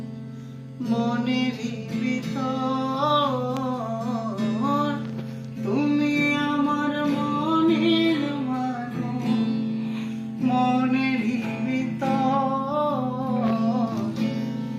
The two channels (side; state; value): both; identical; correlation 1.00